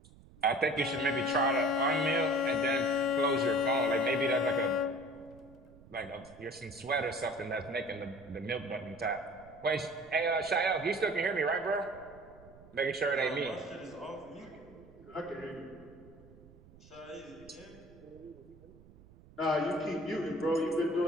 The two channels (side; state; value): right; noise; rumble, 23 dB below the sound